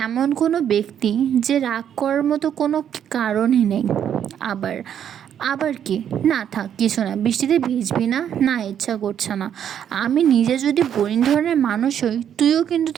এমন কোনো ব্যক্তি যে রাগ করার মতো কোনো কারণই নেই। আবার কি? না থাক, কিছু না, বৃষ্টিতে ভিজবি না? না, ইচ্ছা করছে না। আমি নিজে যদি বোরিং ধরনের মানুষ হই, তুইও কিন্তু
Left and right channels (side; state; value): left; quieter; 9.2 dB